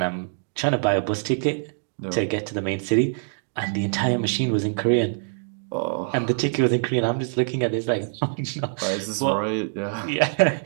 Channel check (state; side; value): silent; left; digital silence